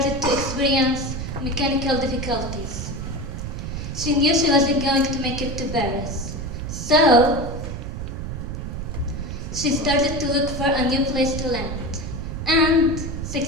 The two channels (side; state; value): right; noise; rumble, 5 dB below the sound